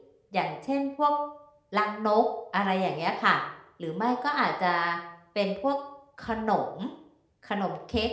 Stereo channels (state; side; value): identical; both; correlation 1.00